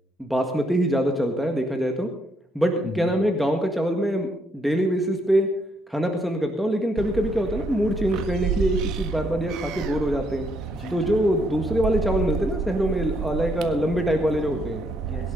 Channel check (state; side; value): normal; both; correlation 0.73